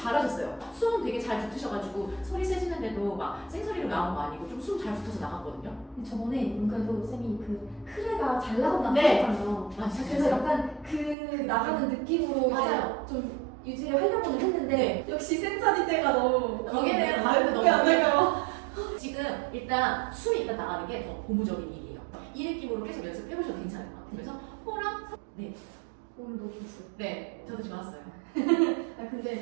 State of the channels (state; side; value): drops out; left; at 11.2 s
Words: 숨 되게 잘 붙으셔가지고 소리 세지는데도 막 생소리로 나온 거 아니고 좀 숨 잘 붙어서 나갔거든요. 저번에 문과도 쌤이 그 크레가 잘 나간다고 네. 하셨잖아요. 맞아요. 그래서 약간 그 나가는 느낌으로 맞아요. 이제 좀 유지를 하려고는 했는데 네. 역시 센사리 때가 너무 거기는 발음도 너무 안 될까요? 지금 일단 숨이 일단 나가는 게 더 고무적인 일이에요. 이 느낌으로 계속 연습해보셔도 괜찮을 것 같아요. 그래서 호랑 네, 오늘 너무 좋았어요. 네, 저도 좋았어요. 아 근데